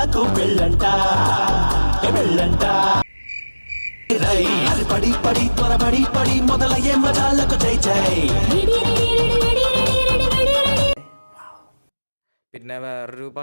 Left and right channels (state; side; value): inverted; both; correlation -1.00